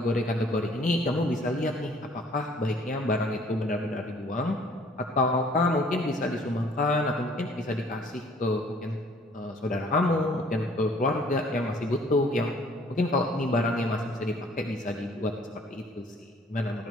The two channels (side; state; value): both; normal; correlation 0.57